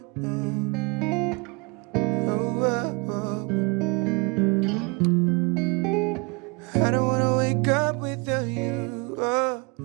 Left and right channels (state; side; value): quieter; left; 30.0 dB